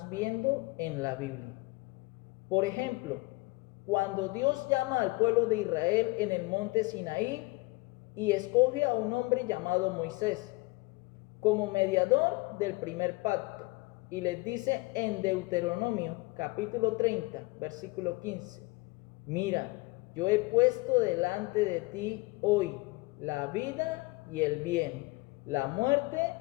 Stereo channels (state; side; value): quieter; right; 24.0 dB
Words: viendo en la Biblia. Por ejemplo, cuando Dios llama al pueblo de Israel en el monte Sinaí y escoge a un hombre llamado Moisés como mediador del primer pacto, y les dice en Deuteronomio capítulo 30, versículo 15, mira, yo he puesto delante de ti hoy la vida y el bien, la muerte